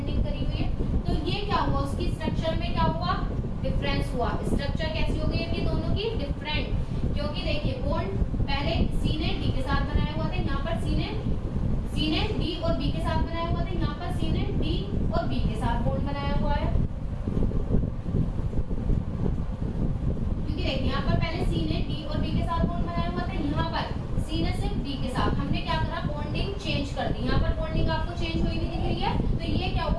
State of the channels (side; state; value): both; identical; correlation 1.00